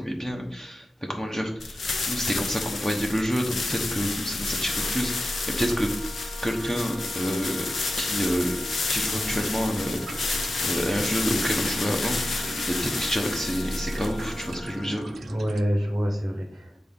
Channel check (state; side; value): normal; both; correlation 0.93